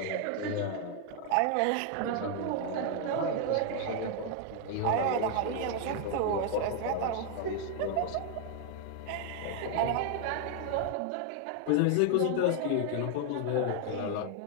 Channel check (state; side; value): different; both; correlation 0.00